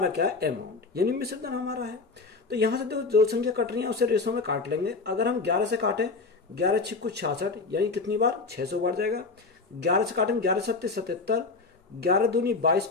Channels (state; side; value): quieter; right; 4.1 dB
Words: क्या है? अमाउंट, यानी मिश्र धन हमारा है। तो यहां से देखो, जो संख्या कट रही है उसे रेशो में काट लेंगे। अगर हम 11 से काटें, 11 छिक्कू 66, यानी कितनी बार? 600 बार जाएगा। 11 से काटेंगे, 11 सत्ते 77, 11 दूनी 22